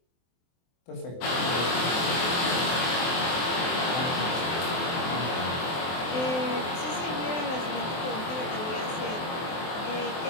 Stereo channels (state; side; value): late; right; 23 ms